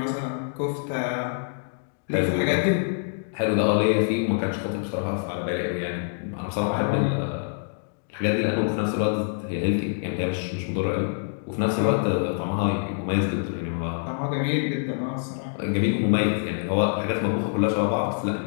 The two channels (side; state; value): right; silent; digital silence